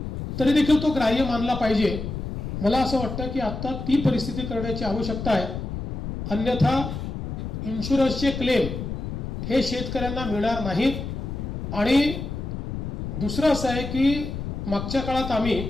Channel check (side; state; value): left; noise; rumble, 5 dB below the sound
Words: तरी देखील तो ग्राह्य मानला पाहिजे. मला असं वाटतं की आता ती परिस्थिती करण्याची आवश्यकता आहे. अन्यथा इन्शुरन्सचे क्लेम हे शेतकऱ्यांना मिळणार नाहीत. आणि दुसरं असं आहे की मागच्या काळात आम्ही